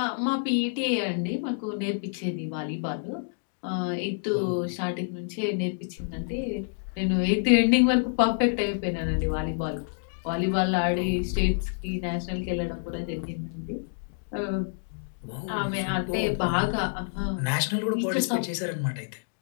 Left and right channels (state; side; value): silent; right; digital silence